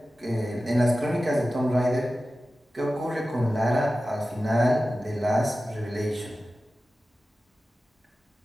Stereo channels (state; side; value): normal; both; correlation 0.94